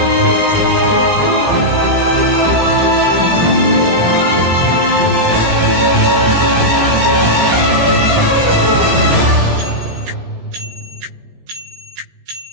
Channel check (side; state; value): left; late; 17 ms